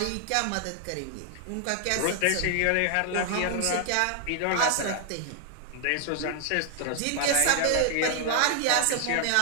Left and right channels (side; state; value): both; different; correlation 0.00